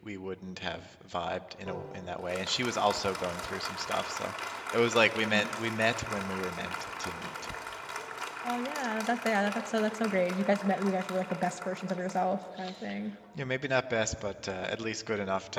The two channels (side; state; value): both; identical; correlation 1.00